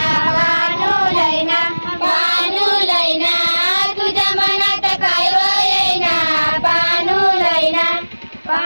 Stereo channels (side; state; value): both; inverted; correlation -1.00